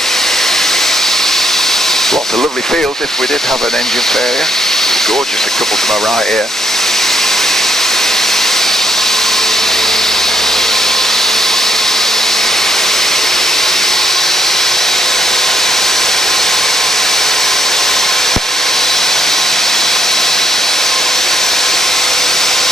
Lots of lovely fields if we did have an engine failure. Gorgeous, a couple to my right here.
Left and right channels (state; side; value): normal; both; correlation 0.75